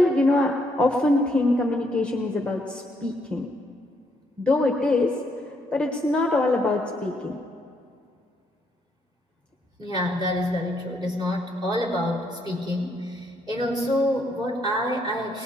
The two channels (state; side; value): normal; both; correlation 0.73